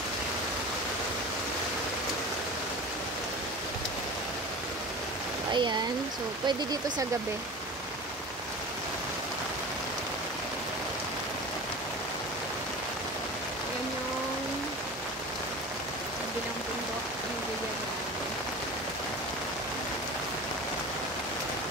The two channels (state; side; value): normal; both; correlation 0.34